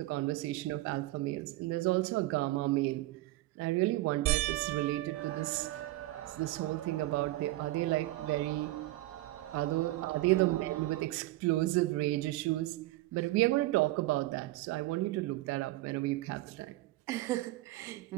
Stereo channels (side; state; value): left; quieter; 17.8 dB